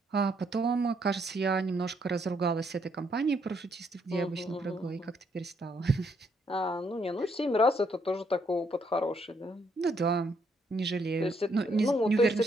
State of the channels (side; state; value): both; normal; correlation 0.73